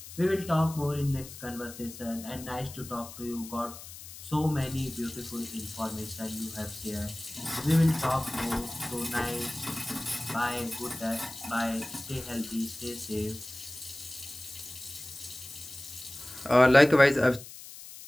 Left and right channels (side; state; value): left; noise; hiss, 14 dB below the sound